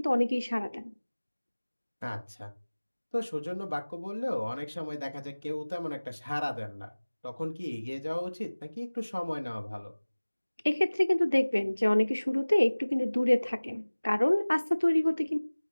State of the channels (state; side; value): inverted; both; correlation -1.00